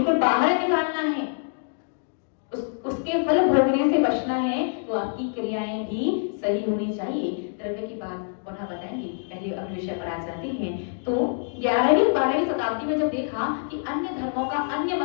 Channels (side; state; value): right; silent; digital silence